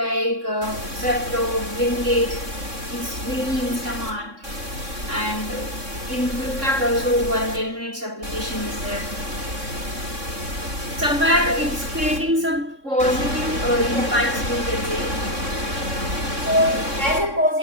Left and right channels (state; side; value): late; left; 3.6 ms